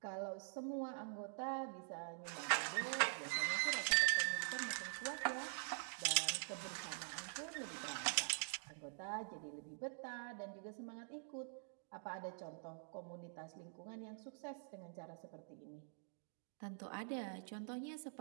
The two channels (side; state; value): left; silent; digital silence